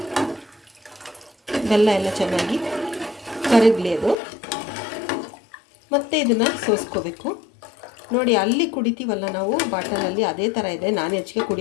ಬೆಲ್ಲ ಎಲ್ಲ ಚೆನ್ನಾಗಿ ಕರಗಲಿ ಅದು. ಮತ್ತು ಇದನ್ನು ಸೋಸ್ಕೋಬೇಕು. ನೋಡಿ ಅಲ್ಲಿ ಕುಡಿತೀವಲ್ಲ ನಾವು ಬಾಟಲಲ್ಲಿ, ಅದೇ ಥರ ಇದೆ. ನಾನು ಹೆಚ್ಚಿಗೆ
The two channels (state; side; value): drops out; right; at 4.2 s